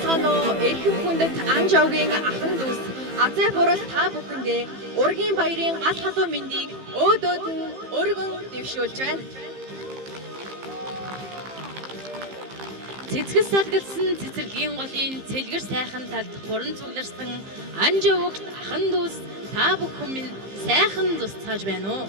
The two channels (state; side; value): late; left; 15 ms